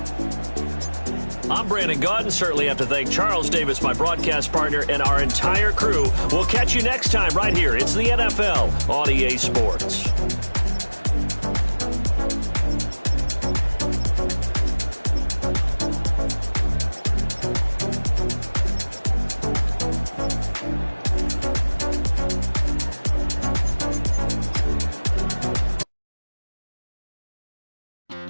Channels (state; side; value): inverted; both; correlation -1.00